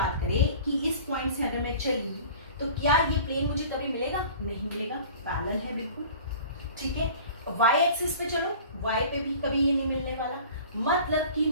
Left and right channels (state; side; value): inverted; both; correlation -0.43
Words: करें कि इस पॉइंट से अगर मैं चली तो क्या ये प्लेन मुझे कभी मिलेगा? नहीं मिलेगा, पैरेलल है बिल्कुल, ठीक है। y एक्सिस पे चलो, y पे भी कभी ये नहीं मिलने वाला। मतलब कि